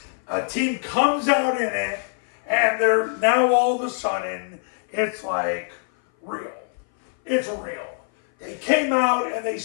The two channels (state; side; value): silent; right; 58 dB below the other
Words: a team comes out in it, and they're now all of a sudden, it's like real. It's real. They came out and they